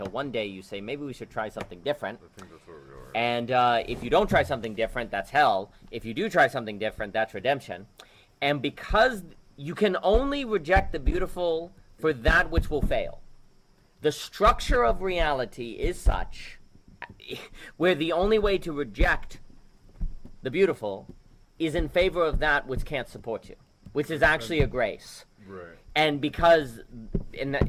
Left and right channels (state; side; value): identical; both; correlation 1.00